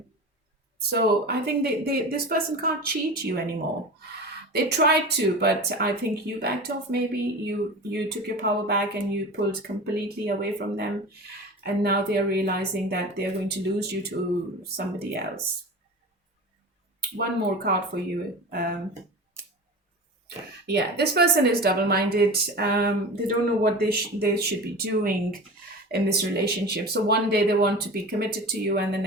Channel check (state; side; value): normal; both; correlation 0.32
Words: So I think this person can't cheat you anymore. They tried to, but I think you backed off. Maybe you took your power back and you pulled completely away from them, and now they are realizing that they are going to lose you to somebody else. One more card for you. Yeah, this person is double-minded. They don't know what they should be doing in this relationship. So one day they want to be committed to you, and the